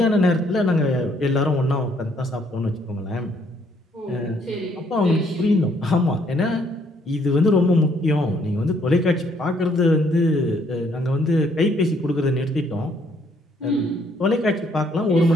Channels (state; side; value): normal; both; correlation 0.67